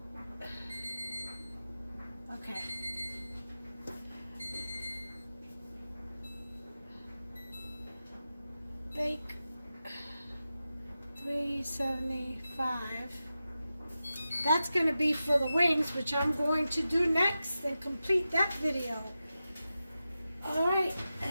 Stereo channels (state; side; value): inverted; both; correlation -0.92